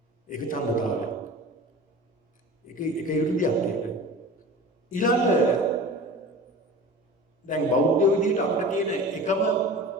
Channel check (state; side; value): normal; both; correlation 0.36